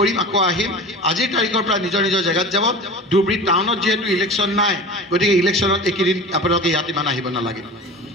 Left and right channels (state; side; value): normal; both; correlation 0.36